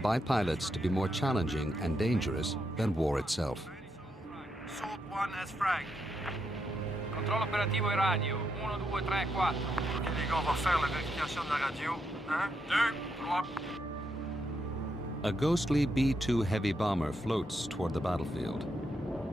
by pilots to be more challenging and dangerous than war itself. Salt 1 as frag. Controllo operativo e radio. 1, 2, 3, 4. Ok, les gars, on va faire la vérification de la radio. 1, 2, 3. A ghostly B-2 heavy bomber floats toward the battlefield.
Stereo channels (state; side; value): normal; both; correlation 0.81